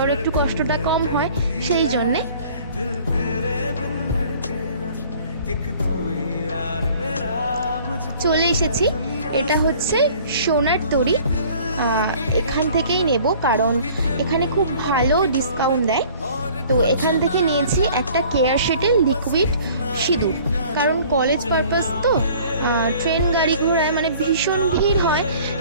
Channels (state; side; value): inverted; both; correlation -0.51